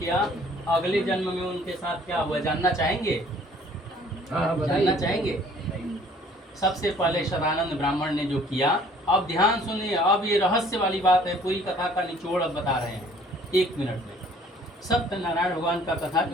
अगले जन्म में उनके साथ क्या हुआ जानना चाहेंगे? जानना चाहेंगे? सबसे पहले शतानंद ब्राह्मण ने जो किया, अब ध्यान सुनिए, अब ये रहस्य वाली बात है, पूरी कथा का निचोड़ अब बता रहे हैं 1 मिनट में। सत्यनारायण भगवान का कथा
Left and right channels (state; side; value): normal; both; correlation 0.56